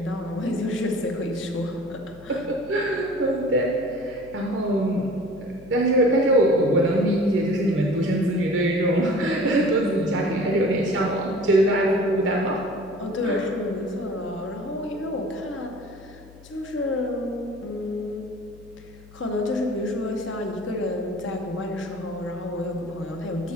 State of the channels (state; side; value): noise; left; hum, 22 dB below the sound